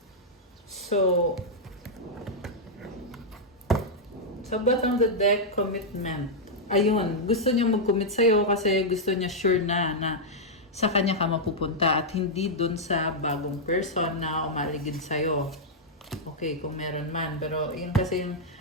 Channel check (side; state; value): both; normal; correlation -0.05